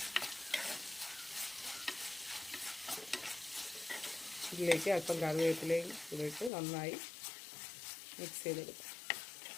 ഇതിലേക്ക് അല്പം കറിവേപ്പിലയും ഇട്ട് നന്നായി മിക്സ് ചെയ്തെടുക്കാം.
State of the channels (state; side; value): drops out; right; at 6.5 s